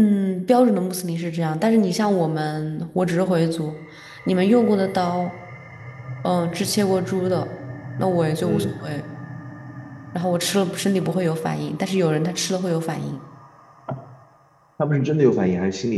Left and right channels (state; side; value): identical; both; correlation 1.00